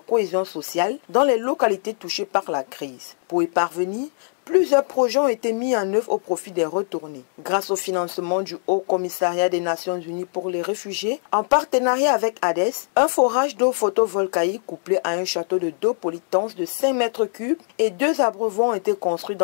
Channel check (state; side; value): silent; right; 64 dB below the other